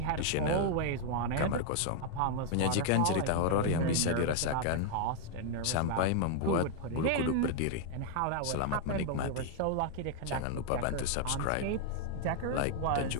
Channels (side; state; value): both; different; correlation 0.00